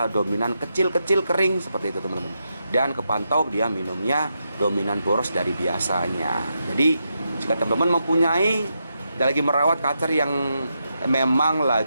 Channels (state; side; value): inverted; both; correlation -0.84